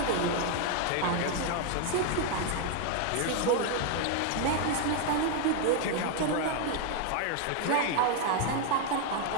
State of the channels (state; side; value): different; both; correlation 0.01